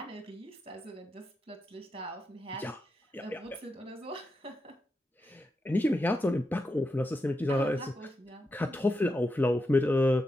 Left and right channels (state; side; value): normal; both; correlation 0.86